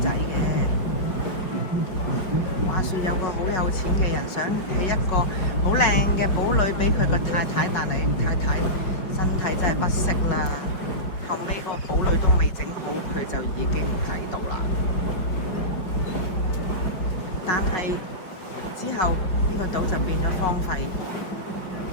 仔嘅。話說有個好有錢嘅人想起一個好靚嘅堡壘俾佢個太太，但係太太身體真係不適啦。後尾個堡壘都未整好，佢就已經喺度啦。但係之後呢個島就變咗荒廢。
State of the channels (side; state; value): right; late; 5.4 ms